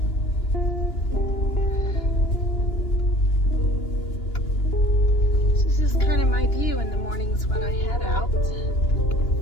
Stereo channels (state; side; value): late; right; 2.9 ms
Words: This is kind of my view in the mornings when I head out.